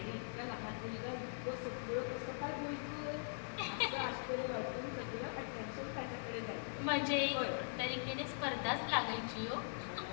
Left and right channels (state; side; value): silent; right; digital silence